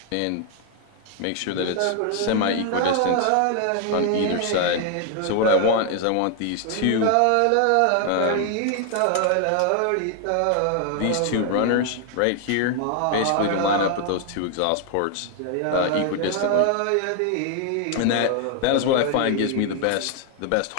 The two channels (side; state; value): both; different; correlation 0.00